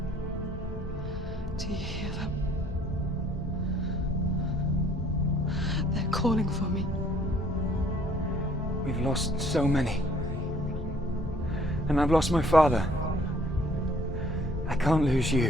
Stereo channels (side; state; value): both; normal; correlation 0.60